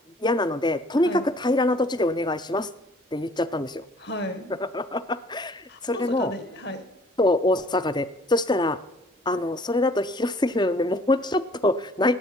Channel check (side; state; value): both; normal; correlation 0.56